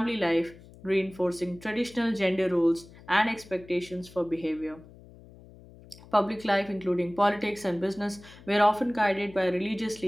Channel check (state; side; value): noise; left; hum, 21 dB below the sound